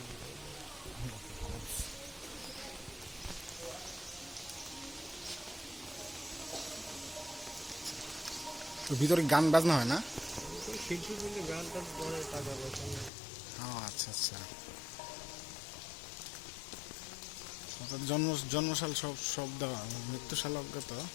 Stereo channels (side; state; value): right; drops out; at 13.1 s